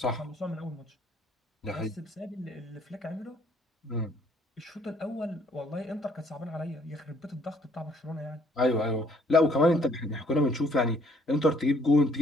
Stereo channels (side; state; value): both; normal; correlation 0.64